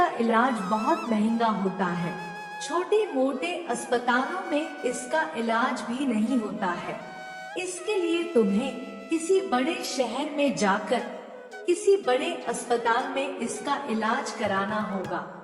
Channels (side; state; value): both; identical; correlation 1.00